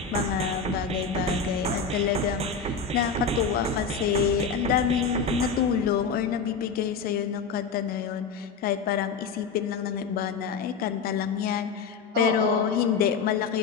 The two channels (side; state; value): right; quieter; 5.4 dB